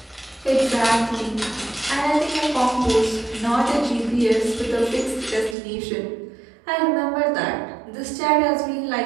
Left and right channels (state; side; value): drops out; left; at 5.6 s